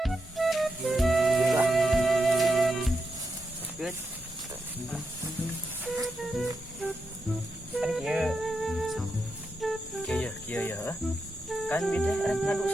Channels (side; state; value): both; normal; correlation 0.86